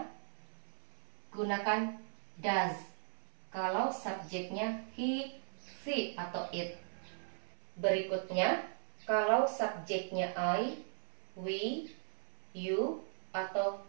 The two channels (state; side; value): silent; left; 53 dB below the other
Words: gunakan does. Kalau subjeknya he, she, atau it. Berikutnya, kalau subjeknya I, we, you, atau